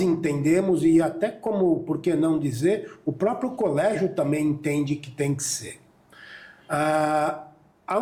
e até como, por que não dizer, o próprio colégio também entende que tem que ser.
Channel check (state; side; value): identical; both; correlation 1.00